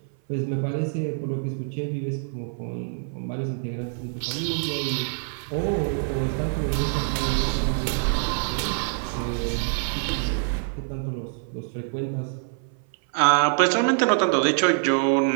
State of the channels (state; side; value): silent; left; 57 dB below the other